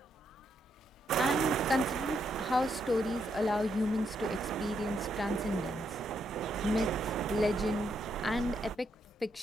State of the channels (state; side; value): normal; both; correlation 0.78